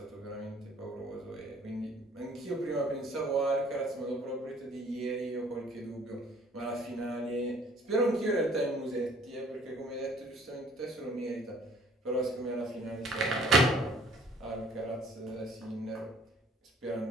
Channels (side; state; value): both; normal; correlation 0.56